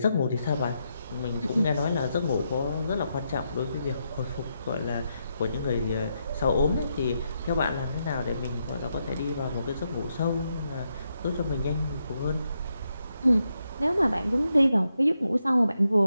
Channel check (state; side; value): inverted; both; correlation -0.82